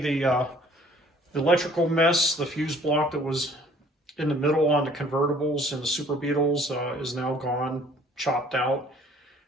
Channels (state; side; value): normal; both; correlation 0.56